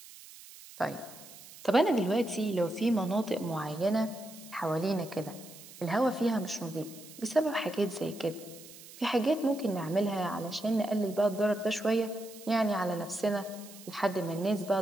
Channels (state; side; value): noise; right; hiss, 18 dB below the sound